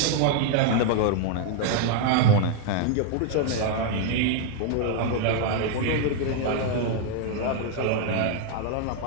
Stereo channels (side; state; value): both; different; correlation 0.00